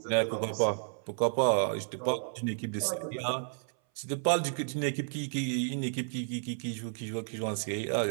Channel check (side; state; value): left; silent; 56 dB below the other